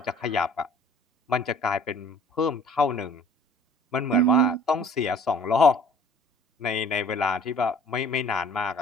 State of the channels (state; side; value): normal; both; correlation 0.51